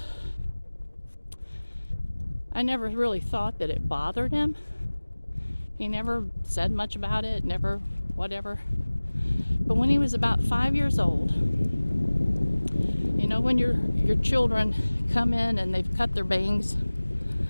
I never really thought that it bothered him. He never said much about it, never whatever. But when he was about 5 years old, you know, when your children come in and they've cut their bangs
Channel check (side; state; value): both; inverted; correlation -1.00